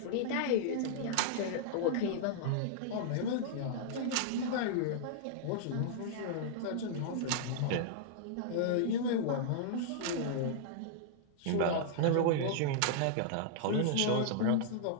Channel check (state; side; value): different; both; correlation -0.01